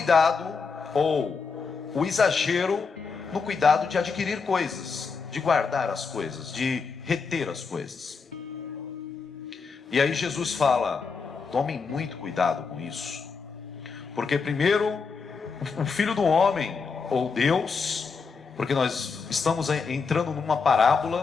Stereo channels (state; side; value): quieter; right; 5.1 dB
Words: ou o exagero no cuidado de adquirir coisas, de guardar as coisas, de reter as coisas. E aí Jesus fala: tomem muito cuidado com isso, porque primeiro o Filho do Homem, ou Deus, porque nós estamos entrando numa